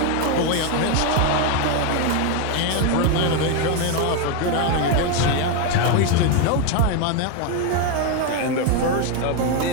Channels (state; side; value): different; both; correlation 0.01